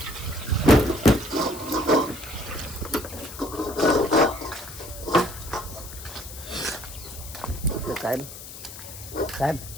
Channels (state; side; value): noise; left; hiss, 13 dB below the sound